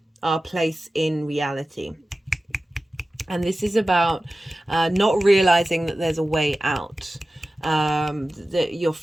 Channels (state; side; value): normal; both; correlation 0.95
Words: our place in reality. And this is about not realizing that there's a way out, that you're